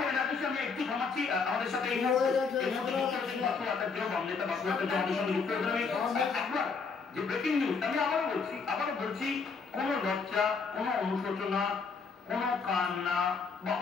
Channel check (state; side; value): quieter; right; 5.0 dB